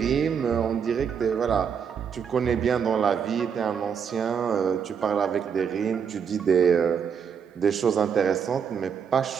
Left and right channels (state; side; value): quieter; left; 7.1 dB